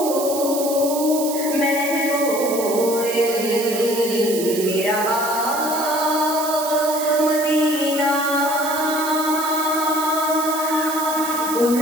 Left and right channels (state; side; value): noise; right; hiss, 8 dB below the sound